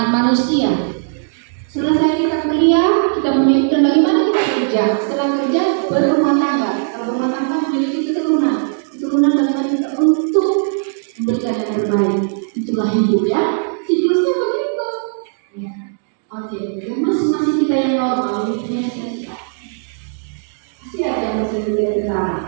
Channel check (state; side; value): silent; left; digital silence